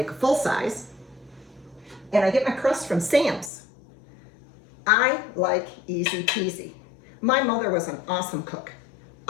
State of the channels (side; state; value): right; drops out; at 3.5 s